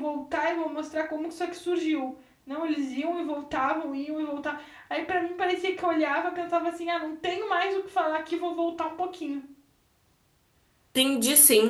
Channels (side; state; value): both; identical; correlation 1.00